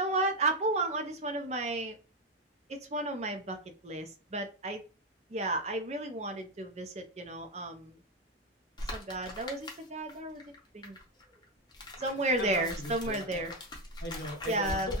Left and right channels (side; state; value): both; normal; correlation 0.08